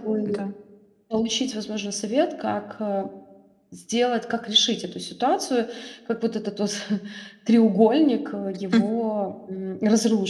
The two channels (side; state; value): both; identical; correlation 1.00